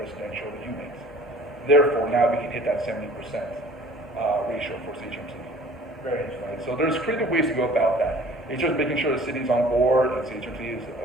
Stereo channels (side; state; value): both; normal; correlation 0.50